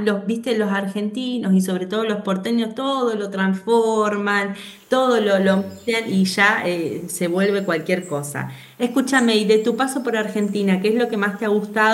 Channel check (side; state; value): both; identical; correlation 1.00